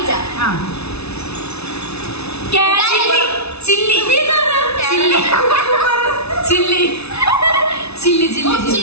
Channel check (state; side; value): late; right; 0.80 ms